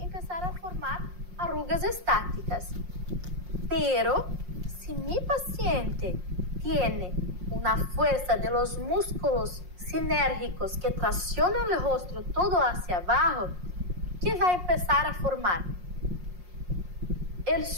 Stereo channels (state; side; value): late; left; 5.6 ms